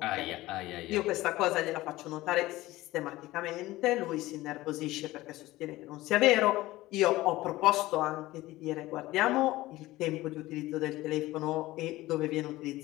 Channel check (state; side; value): quieter; right; 17.8 dB